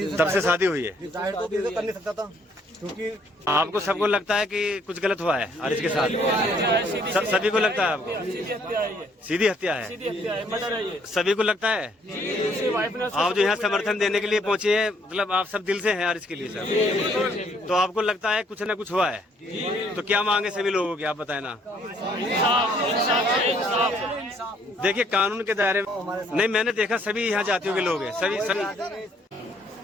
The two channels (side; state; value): both; normal; correlation 0.65